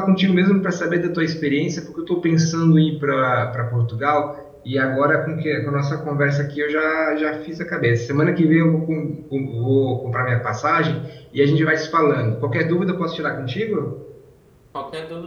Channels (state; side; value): identical; both; correlation 1.00